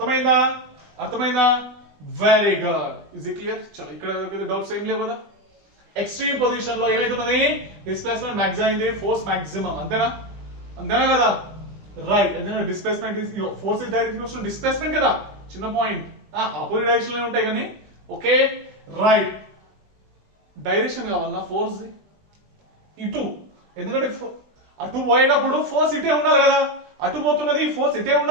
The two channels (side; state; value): left; late; 20 ms